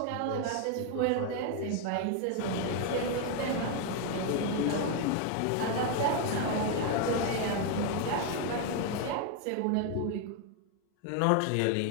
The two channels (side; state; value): both; different; correlation 0.01